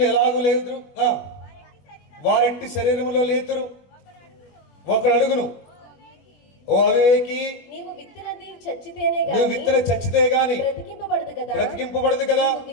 ఎలాగూ లేదురు, వారెట్టి శరీరంలో లేతురు. ఒకడు అడుగును, ఓ అవివేకి, నీవు విత్తనది చచ్చితేనే నువ్వు విత్తన చచ్చితే గాని బ్రతికింపబడదు కదా.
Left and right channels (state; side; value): late; right; 21 ms